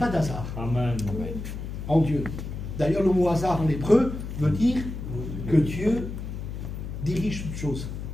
d'hasard Amen. en Dieu. D'ailleurs, le mot hasard en hébreu veut dire que Dieu dirige toutes choses.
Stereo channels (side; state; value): left; noise; hum, 7 dB below the sound